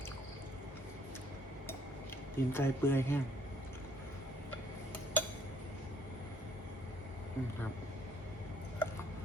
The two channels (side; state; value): both; normal; correlation 0.63